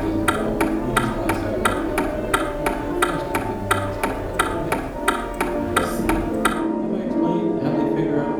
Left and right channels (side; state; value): both; identical; correlation 1.00